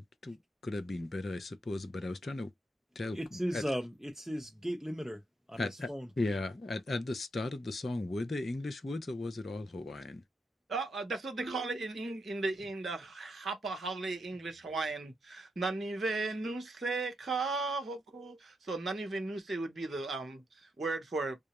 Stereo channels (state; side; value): normal; both; correlation 0.82